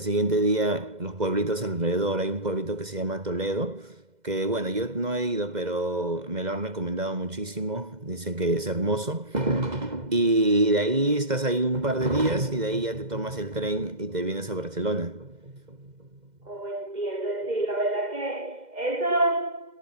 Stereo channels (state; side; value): late; left; 2.0 ms